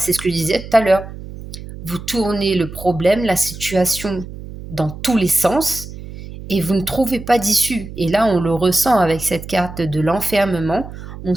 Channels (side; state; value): right; noise; hum, 12 dB below the sound